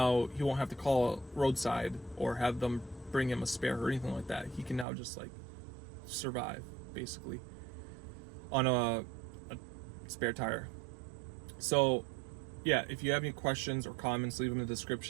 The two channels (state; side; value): drops out; left; at 4.9 s